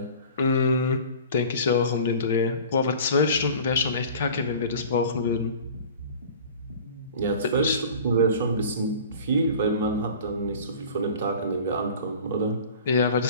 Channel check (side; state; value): both; inverted; correlation -0.42